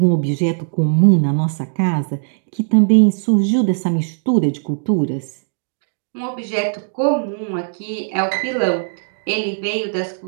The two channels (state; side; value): silent; left; digital silence